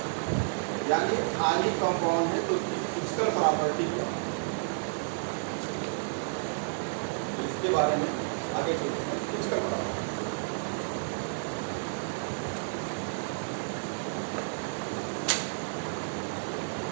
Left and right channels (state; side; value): silent; left; 57 dB below the other